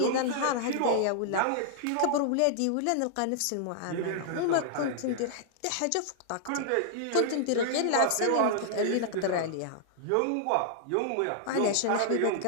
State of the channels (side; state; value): both; different; correlation -0.01